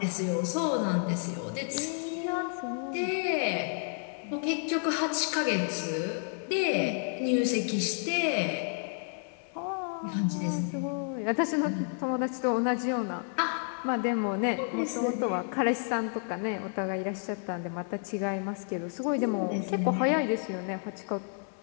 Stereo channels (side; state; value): right; silent; 57 dB below the other